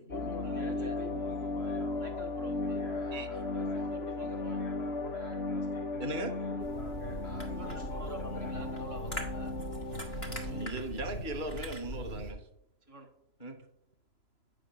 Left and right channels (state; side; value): late; right; 2.9 ms